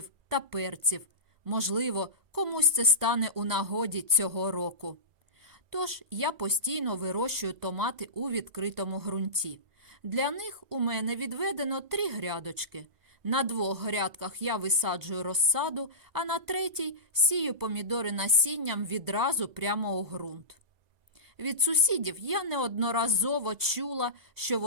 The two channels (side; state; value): left; late; 2.0 ms